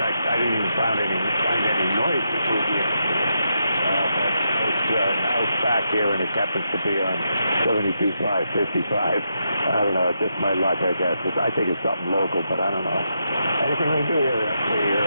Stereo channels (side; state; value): both; inverted; correlation -0.83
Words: didn't even find any noise before the but now it's back here, and it happens to be on 72.5, 55. I don't know. It's just my luck, I guess. I think it's something local, but I don't know. Anything we can do here,